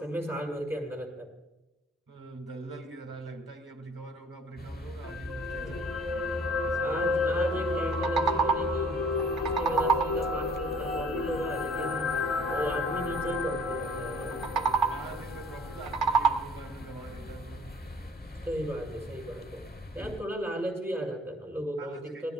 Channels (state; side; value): normal; both; correlation 0.54